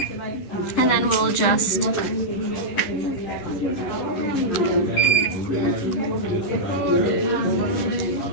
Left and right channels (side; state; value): right; late; 11 ms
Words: And then we'll just